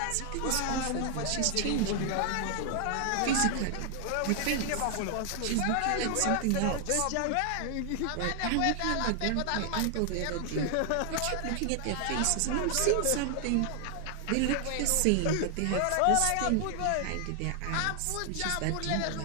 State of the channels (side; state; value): both; different; correlation 0.00